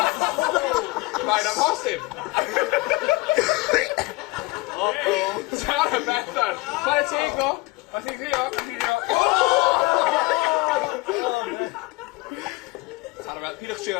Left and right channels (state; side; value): quieter; right; 22.6 dB